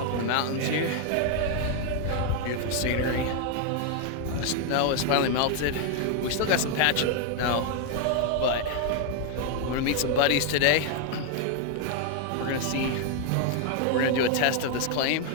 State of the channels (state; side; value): different; both; correlation 0.00